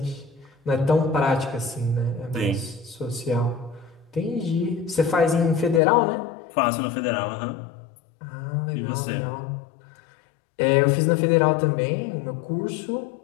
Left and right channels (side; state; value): right; drops out; at 5.8 s